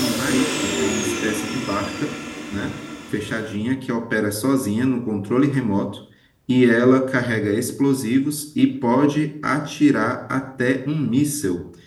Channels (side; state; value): both; identical; correlation 1.00